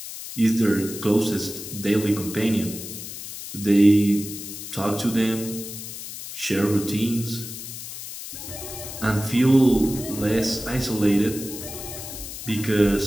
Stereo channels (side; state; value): left; noise; hiss, 10 dB below the sound